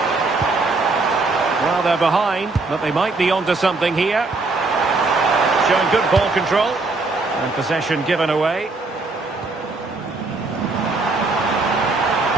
Well, they're behind, but they might be onto something here. Showing good ball control. And possession given away.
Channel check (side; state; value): left; quieter; 3.5 dB